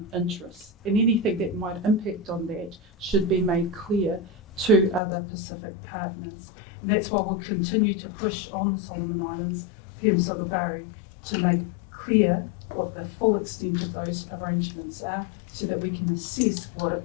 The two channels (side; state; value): right; drops out; at 5.0 s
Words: interests. And anything that might impact on that should be made clear to other Pacific partners. And that's why we'll continue to push on the Solomon Islands, PM Sagabare, to make clear what the full extent of those arrangements are so that we can assess what it